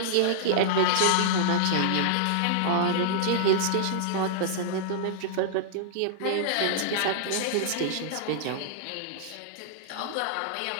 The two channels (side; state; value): both; different; correlation -0.01